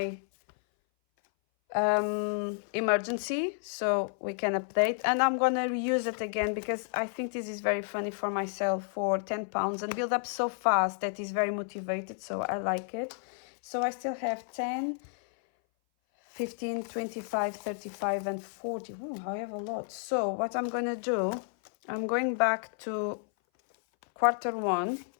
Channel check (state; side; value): silent; right; 57 dB below the other